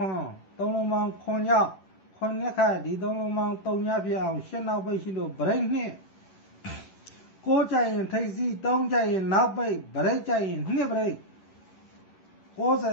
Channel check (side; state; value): right; late; 11 ms